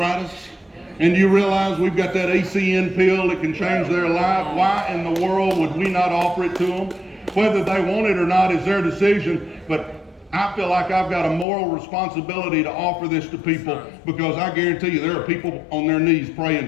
And you realize we've got that ACN pill that can change their life? Why in the world would we not offer it to them? Whether they want it or not is their decision, but I feel like I've got a moral responsibility to offer this to people, because I guarantee you there are people on their knees praying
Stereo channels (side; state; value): right; drops out; at 11.5 s